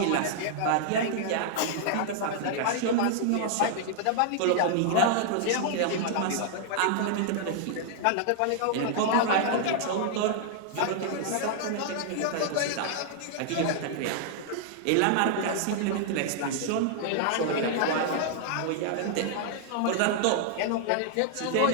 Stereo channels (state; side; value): different; both; correlation -0.01